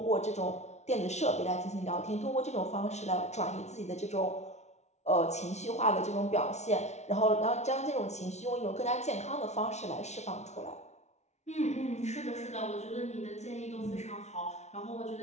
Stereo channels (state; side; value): late; right; 0.32 ms